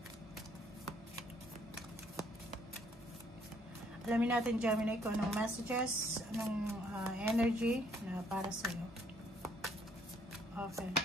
Alamin natin Gemini kung anong messages, anong energy na para sa iyo. Okay.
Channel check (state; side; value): normal; both; correlation 0.66